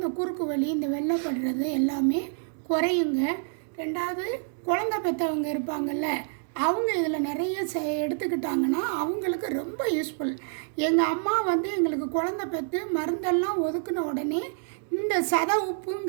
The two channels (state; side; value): silent; left; digital silence